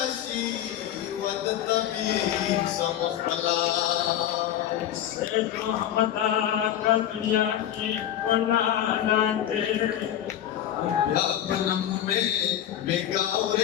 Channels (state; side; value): quieter; right; 11.1 dB